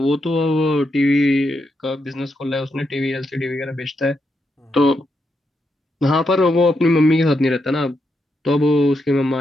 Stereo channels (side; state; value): both; normal; correlation 0.82